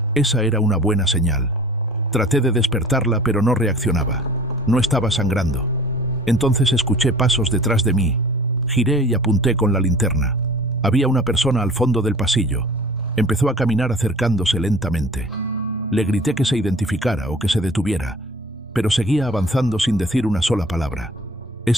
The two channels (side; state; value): both; normal; correlation 0.45